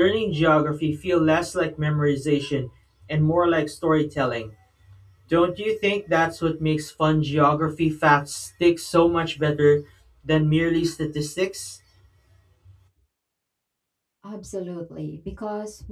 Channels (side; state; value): both; identical; correlation 1.00